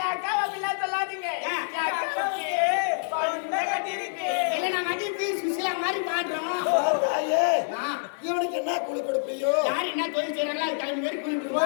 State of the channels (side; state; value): right; silent; digital silence